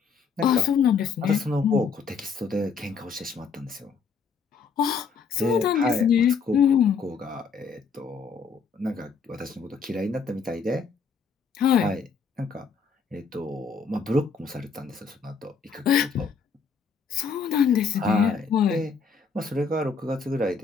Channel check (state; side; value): quieter; right; 5.5 dB